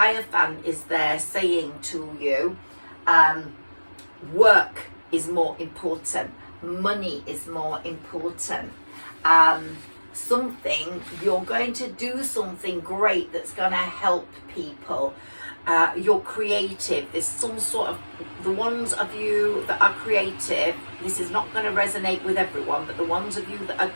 is there saying to you, work is more important, money is more important. You're going to do something great that's going to help people. You're creative. There's some sort of, the ones of you that are creative, this is not going to resonate with everyone, but the ones of you that are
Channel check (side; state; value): both; inverted; correlation -1.00